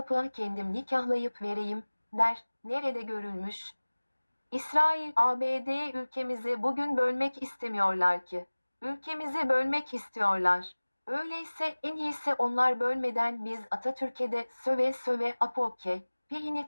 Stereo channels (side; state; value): both; inverted; correlation -1.00